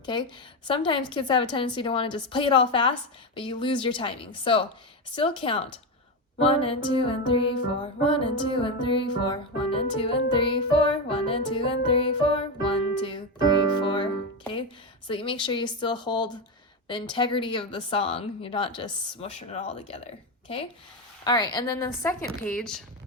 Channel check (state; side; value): normal; both; correlation 0.13